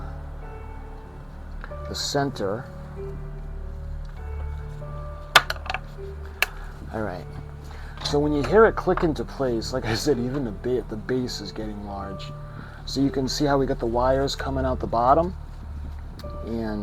the center. All right. So when you hear it click into place, like I said, even the base is getting large. So you can see how we got the wires coming out the bottom.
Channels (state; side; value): identical; both; correlation 1.00